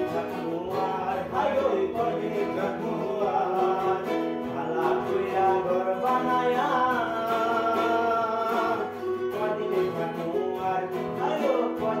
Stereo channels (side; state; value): both; identical; correlation 1.00